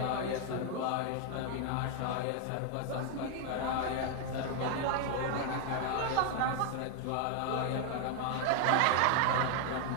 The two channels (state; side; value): different; both; correlation 0.00